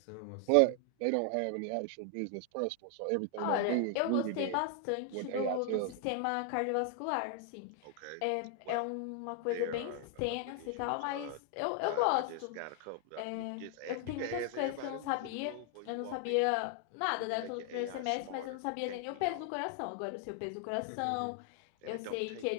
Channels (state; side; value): different; both; correlation 0.00